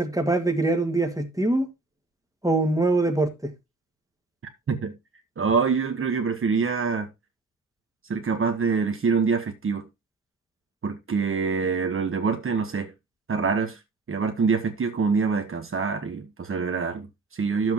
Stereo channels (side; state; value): left; quieter; 4.0 dB